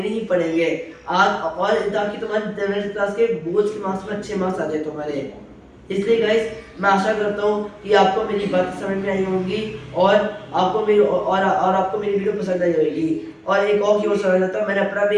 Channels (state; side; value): identical; both; correlation 1.00